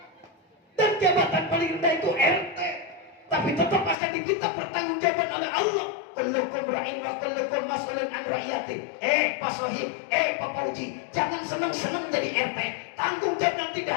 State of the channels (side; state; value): right; drops out; at 4.0 s